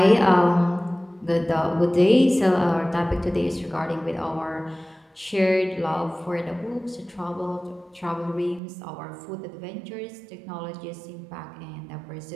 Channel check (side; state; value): left; drops out; at 8.6 s